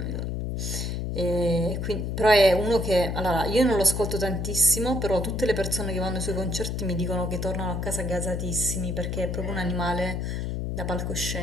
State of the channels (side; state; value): left; noise; hum, 2 dB below the sound